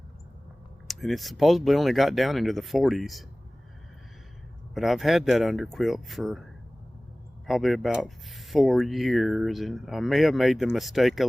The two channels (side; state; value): both; normal; correlation 0.98